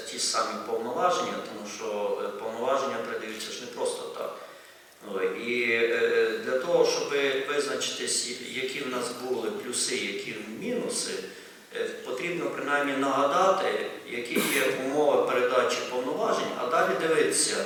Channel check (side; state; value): both; identical; correlation 1.00